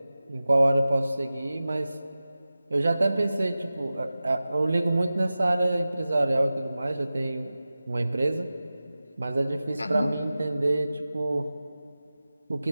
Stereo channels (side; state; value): both; inverted; correlation -0.96